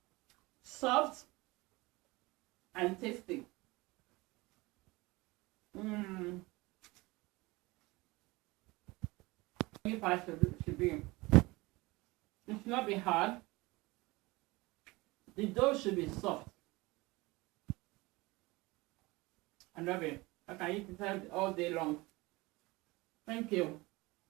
Soft and tasty. Meat pie should be. It should not be hard. The dough should be soft. I love it. I can eat it all day long. Thank you.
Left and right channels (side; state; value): left; quieter; 22.4 dB